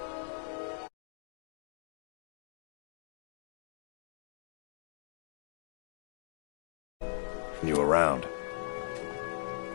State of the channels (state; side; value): silent; right; digital silence